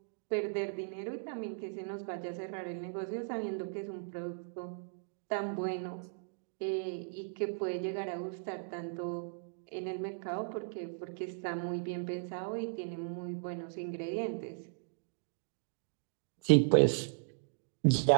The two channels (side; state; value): left; silent; digital silence